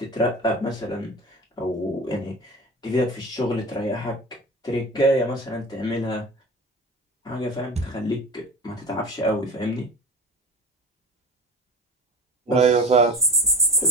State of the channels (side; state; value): both; normal; correlation 0.34